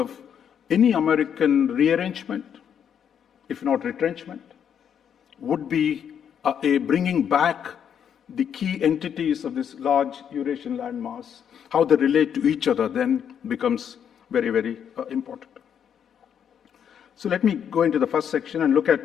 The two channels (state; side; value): quieter; right; 8.4 dB